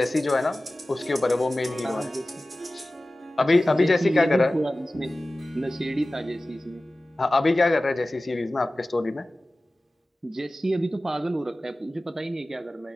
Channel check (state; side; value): normal; both; correlation 0.96